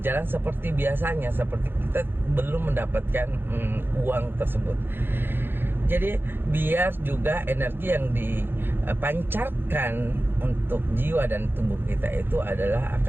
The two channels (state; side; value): late; left; 0.10 ms